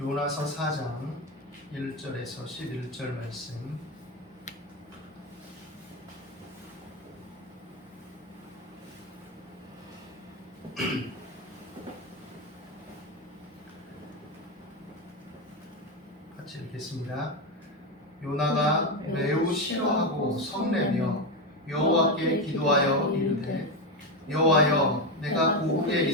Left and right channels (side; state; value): both; normal; correlation 0.12